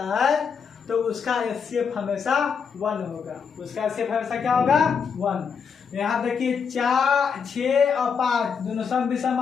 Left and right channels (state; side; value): quieter; right; 6.3 dB